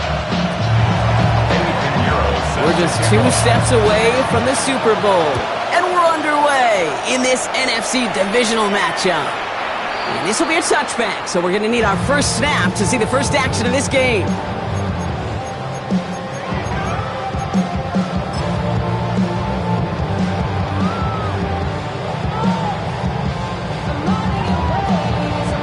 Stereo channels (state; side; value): identical; both; correlation 1.00